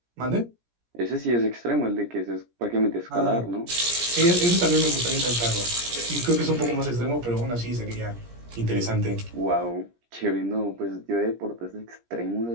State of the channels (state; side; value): late; left; 17 ms